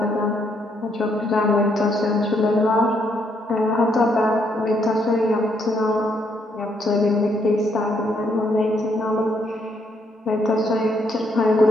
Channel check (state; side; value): normal; both; correlation 0.73